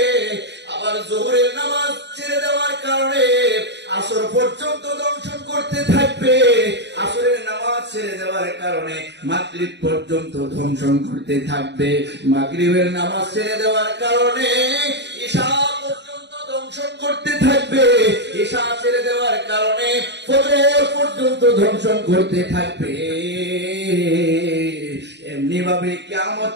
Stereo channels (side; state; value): left; late; 0.51 ms